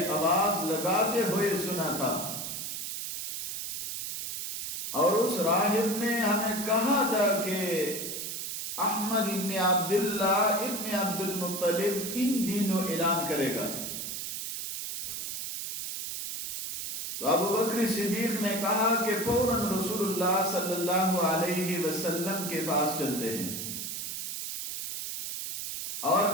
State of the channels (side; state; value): right; noise; hiss, 5 dB below the sound